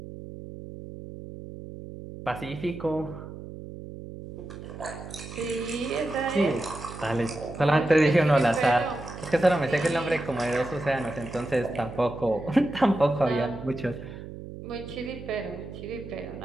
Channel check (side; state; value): right; noise; hum, 12 dB below the sound